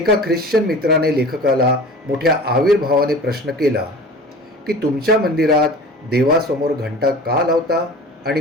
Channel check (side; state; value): both; normal; correlation 0.39